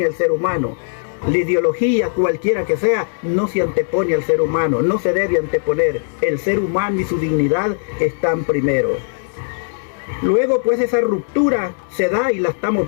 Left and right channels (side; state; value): right; silent; digital silence